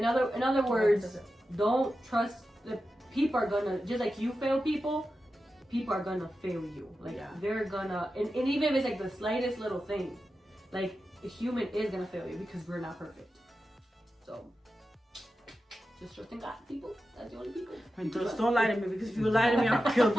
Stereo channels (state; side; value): normal; both; correlation 0.91